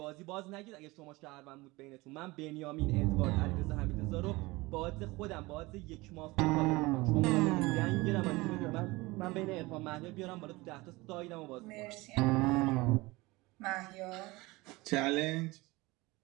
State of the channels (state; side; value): quieter; left; 22.0 dB